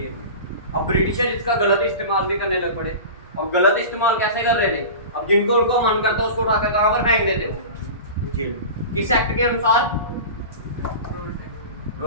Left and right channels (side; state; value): both; inverted; correlation -0.32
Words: में। अब ब्रिटिशर इसका गलत इस्तेमाल भी करने लग पड़े। और गलत इस्तेमाल कैसे कर रहे थे? अब जिनको उनको मन करता उसको उठाकर कहां पर फेंक देते हो? जेल में। किस एक्ट के अनुसार?